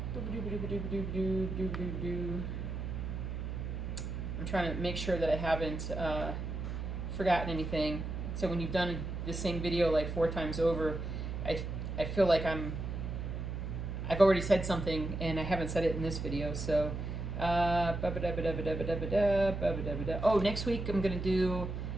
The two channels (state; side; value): noise; right; hum, 4 dB below the sound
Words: I'm trying to make sure that I haven't forgotten anything. So when you've done the same video like 4 times over, I feel like I've already said something and I haven't said it in this video. So oh, next week I'm gonna do,